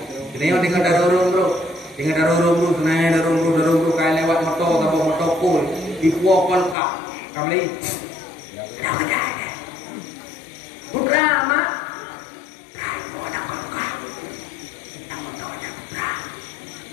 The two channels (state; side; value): drops out; right; at 6.8 s